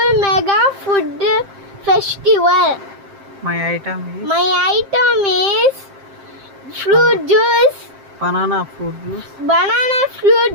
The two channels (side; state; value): left; late; 7.6 ms